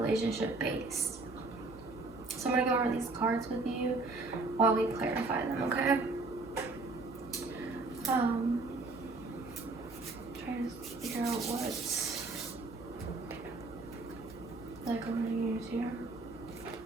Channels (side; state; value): left; quieter; 3.5 dB